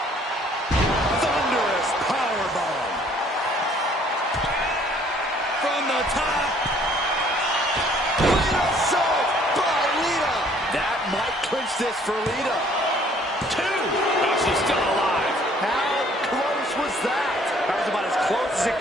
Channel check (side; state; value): both; normal; correlation 0.59